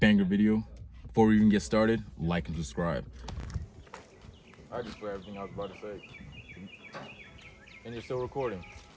video. Before we even get started, like and subscribe. I just forgot everything I was about to say. And you're still recording.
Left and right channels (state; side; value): identical; both; correlation 1.00